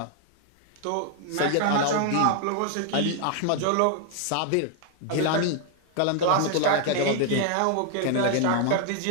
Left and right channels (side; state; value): both; different; correlation 0.00